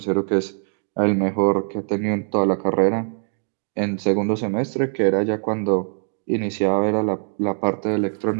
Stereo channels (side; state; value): left; silent; digital silence